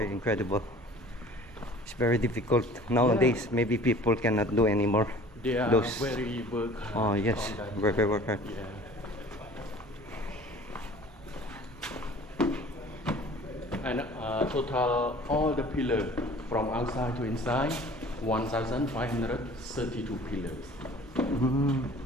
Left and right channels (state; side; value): normal; both; correlation 0.47